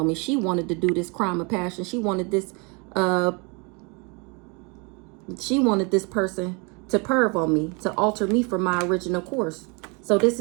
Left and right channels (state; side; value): quieter; left; 31.2 dB